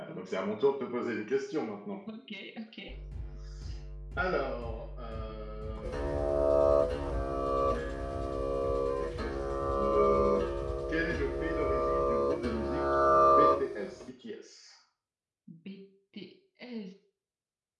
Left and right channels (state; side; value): identical; both; correlation 1.00